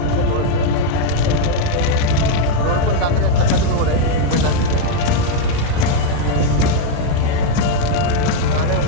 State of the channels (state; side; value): different; both; correlation 0.01